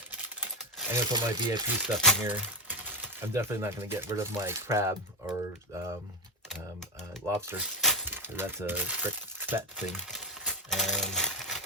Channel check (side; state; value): both; normal; correlation 0.12